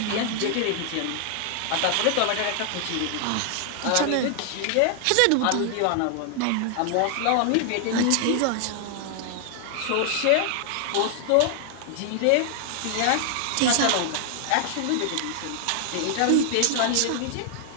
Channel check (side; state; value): both; different; correlation 0.00